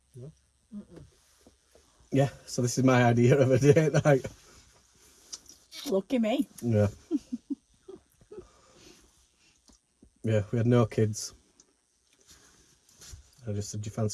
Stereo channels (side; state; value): both; identical; correlation 1.00